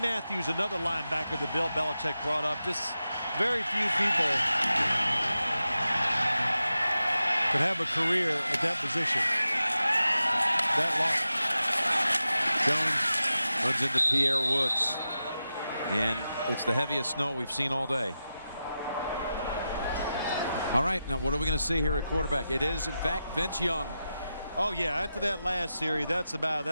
Matthews, another linebacker that Bill Belichick brought up. Just very few people could have a career at that position that long. Jones runs into Pierre Woods, and it's the heaviest snow we've seen all day. All right, now what are we going to see here at quarterback? It is, in fact, Vince Young. Oh, yeah, after that last series,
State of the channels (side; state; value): both; inverted; correlation -0.91